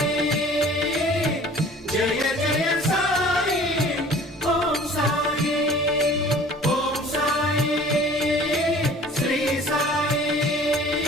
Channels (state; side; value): normal; both; correlation 0.48